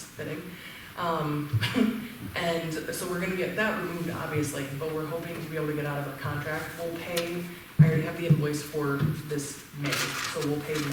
fitting. And so we're gonna get that removed, obviously, but we're hoping to be able to get out of our contract. We'll pay, I already have the invoice for this May, so we'll pay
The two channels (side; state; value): both; identical; correlation 1.00